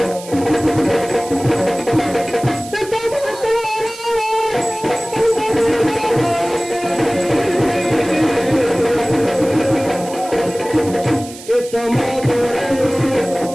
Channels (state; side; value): noise; right; hiss, 16 dB below the sound